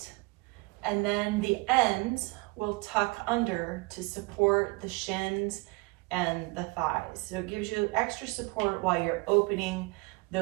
and then the ends will tuck under to support the shins and the thighs. So it gives you extra support while you're opening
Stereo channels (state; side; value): quieter; left; 26.5 dB